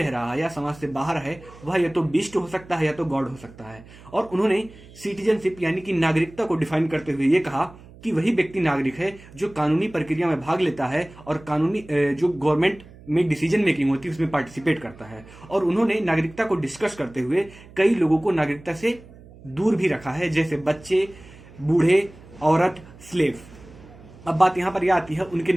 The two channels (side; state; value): right; noise; hum, 21 dB below the sound